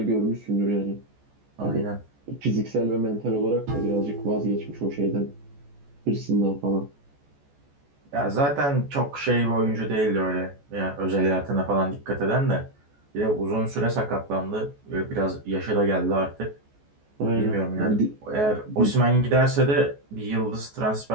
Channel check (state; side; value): late; left; 14 ms